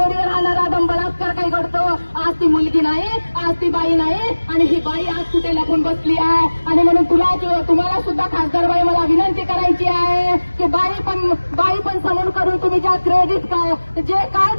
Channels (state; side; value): inverted; both; correlation -1.00